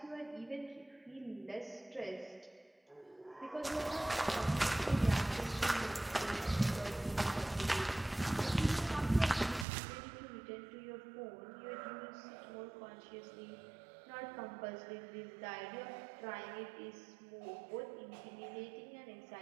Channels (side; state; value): left; drops out; at 9.7 s